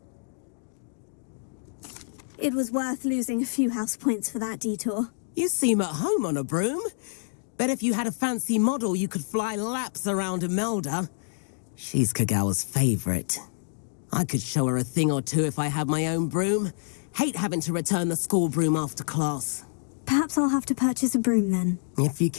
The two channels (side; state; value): right; silent; 60 dB below the other